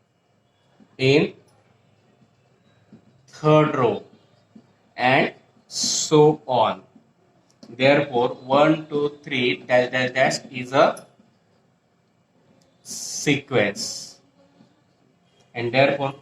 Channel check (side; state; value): both; identical; correlation 1.00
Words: in third row, and so on. Therefore 1 2 3 dash dash dash is a sequence, and therefore